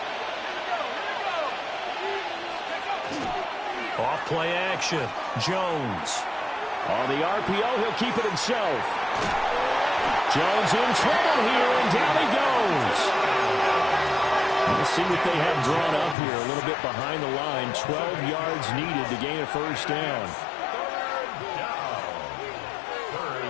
Off play action. Jones. On the RPO, he'll keep it himself. Jones in trouble here, and down he goes. Let's see what they have drawn up here. A little bit behind the line. 12 yards needed to gain a first down.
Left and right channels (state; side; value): drops out; right; at 16.2 s